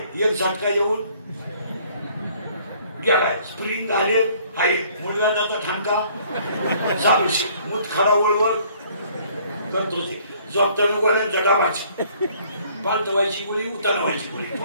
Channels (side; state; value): both; inverted; correlation -0.59